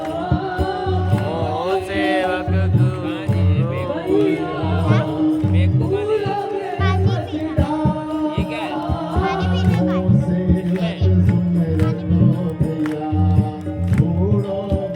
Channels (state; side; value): identical; both; correlation 1.00